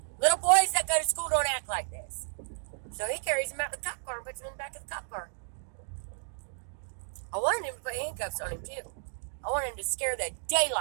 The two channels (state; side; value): silent; left; digital silence